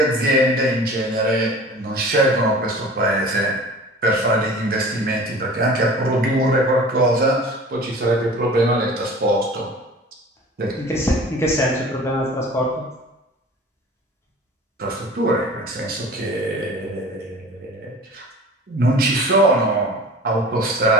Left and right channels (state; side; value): normal; both; correlation 0.41